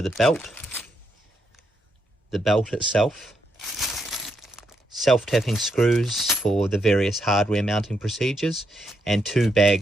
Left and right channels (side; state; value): both; normal; correlation 0.79